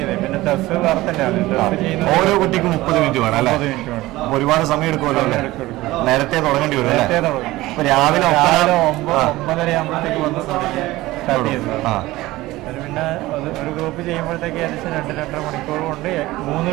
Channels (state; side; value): quieter; left; 18.2 dB